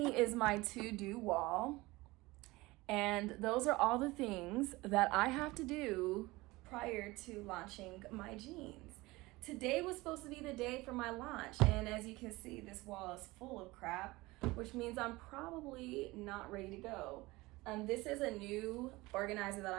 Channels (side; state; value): left; quieter; 21.0 dB